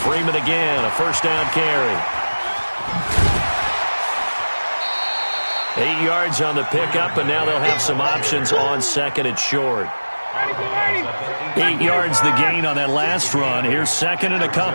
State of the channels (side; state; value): both; inverted; correlation -1.00